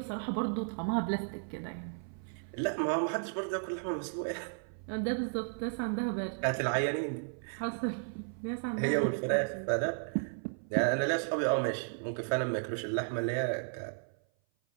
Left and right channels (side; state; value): left; silent; 55 dB below the other